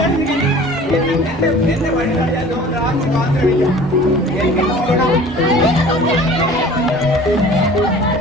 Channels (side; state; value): both; normal; correlation 0.45